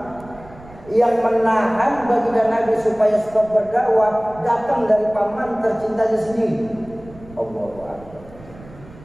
yang menahan baginda Nabi supaya stop berdakwah datang dari paman tercintanya sendiri. Allahu Akbar.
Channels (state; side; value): noise; right; rumble, 20 dB below the sound